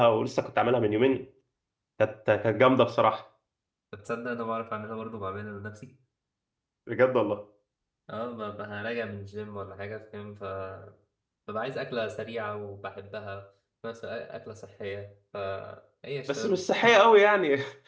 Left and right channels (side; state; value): both; identical; correlation 1.00